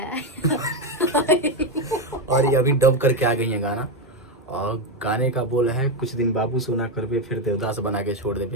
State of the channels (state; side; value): normal; both; correlation 0.09